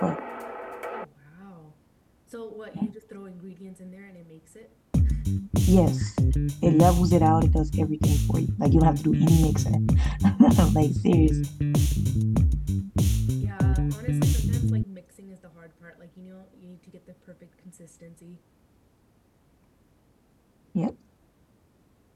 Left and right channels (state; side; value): identical; both; correlation 1.00